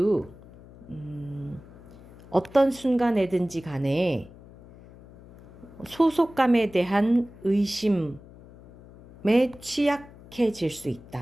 어떤 순간에든지 간에 소속감에 대한 의심에 취약해질 수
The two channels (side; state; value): left; noise; hum, 21 dB below the sound